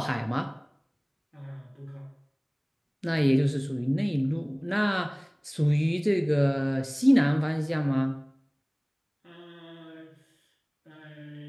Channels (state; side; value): identical; both; correlation 1.00